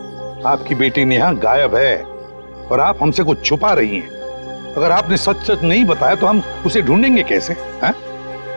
आपकी बेटी नेहा गायब है और आप हमसे कुछ छुपा रही हैं। अगर आपने सच सच नहीं बताया तो हम उसे ढूंढेंगे कैसे? हैं?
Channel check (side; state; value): both; inverted; correlation -1.00